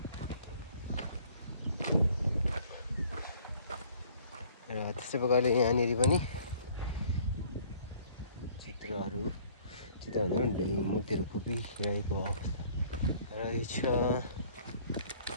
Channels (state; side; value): inverted; both; correlation -0.56